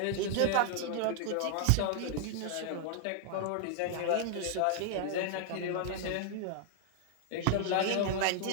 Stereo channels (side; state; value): both; different; correlation 0.00